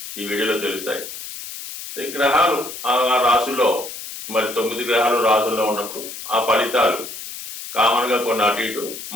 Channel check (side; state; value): left; noise; hiss, 10 dB below the sound